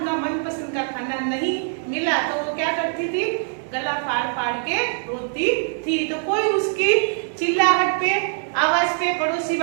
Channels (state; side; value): silent; left; digital silence